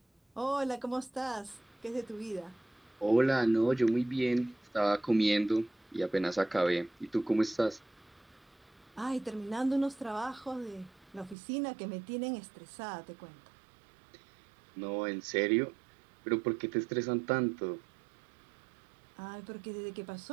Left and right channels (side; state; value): left; drops out; at 11.4 s